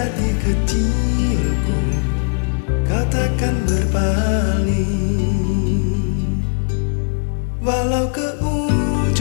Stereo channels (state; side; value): silent; right; 67 dB below the other